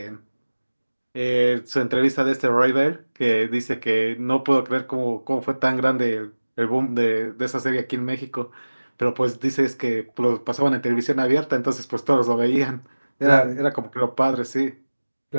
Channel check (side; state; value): both; inverted; correlation -1.00